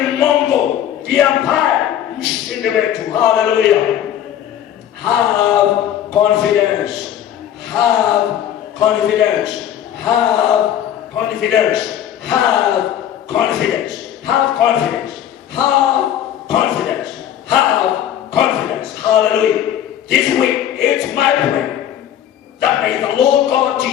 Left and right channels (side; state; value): right; quieter; 10.7 dB